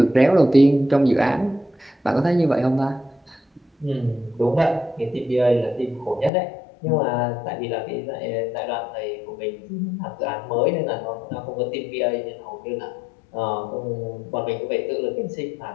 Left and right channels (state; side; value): drops out; right; at 6.3 s